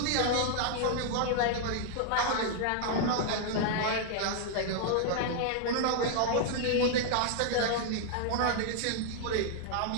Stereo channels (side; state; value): both; different; correlation 0.00